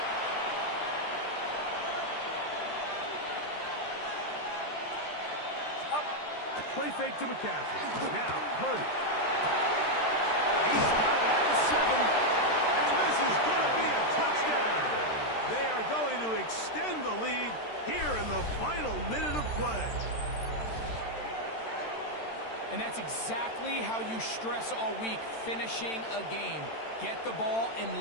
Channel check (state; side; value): late; right; 13 ms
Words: Play fake to McCaffrey. Now, Purdy. He's got it at the 7. And this is going to be a touchdown. They are going to extend the lead here in the final minute of play. And that's exactly how you stress all week, finishing a game. Get the ball and